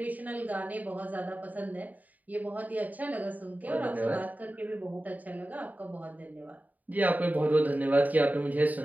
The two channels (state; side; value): late; left; 0.077 ms